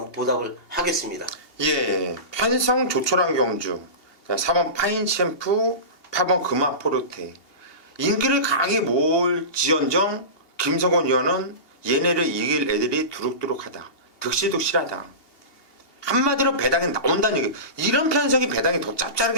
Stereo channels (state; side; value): late; right; 2.8 ms